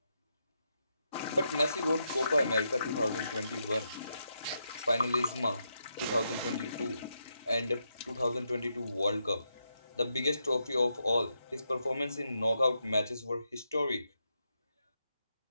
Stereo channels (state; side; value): inverted; both; correlation -0.83